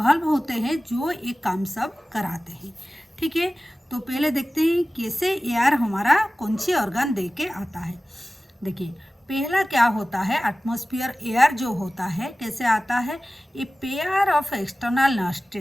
होते हैं जो ये काम सब कराते हैं। ठीक है, तो पहले देखते हैं कैसे एयर हमारा कौन सी ऑर्गन दे के आता है। देखिए पहला क्या होता है, एटमॉस्फेयर एयर जो होता है कैसे आता है, a pair of external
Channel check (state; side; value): normal; both; correlation 0.97